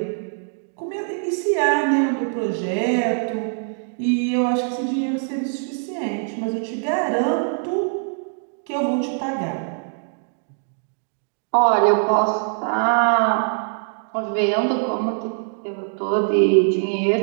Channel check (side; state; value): left; silent; 64 dB below the other